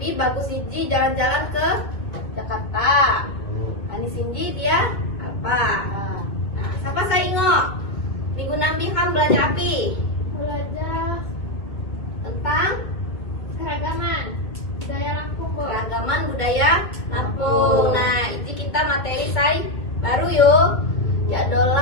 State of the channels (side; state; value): right; late; 2.2 ms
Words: bagus iji jalan-jalan ke Jakarta. Ani Cindy dia Alpa. Nah, Nah, siapa saya ingok? Minggu Nambi kan belajar api Belajar tentang keragaman budaya Lampung, Bu. keragaman budaya Lampung. Nah, ini kita materi saya baru yuk. Ya